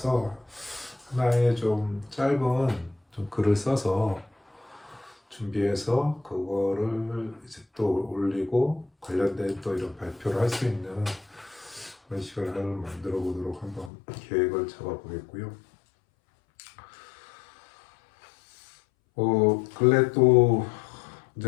하나의 좀 짧은 좀 글을 써서 준비해서 그거를 이제 또 올리고 관련된 또 이런 발표를 할 수 있는 그런 시간을 만들어 보도록 한번 계획을 잡아 보겠고요. 근래 또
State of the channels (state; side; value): drops out; right; at 13.9 s